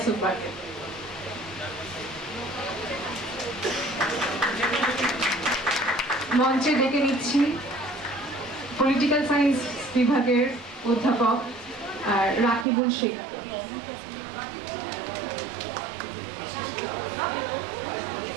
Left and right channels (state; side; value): drops out; left; at 12.7 s